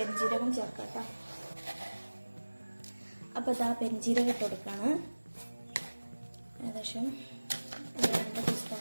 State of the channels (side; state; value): both; inverted; correlation -1.00